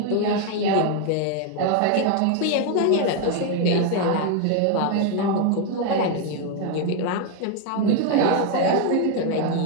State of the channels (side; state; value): both; different; correlation 0.01